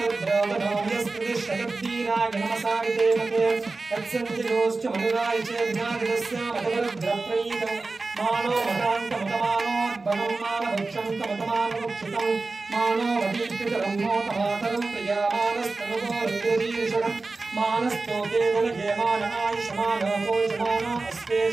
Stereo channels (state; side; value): quieter; left; 3.6 dB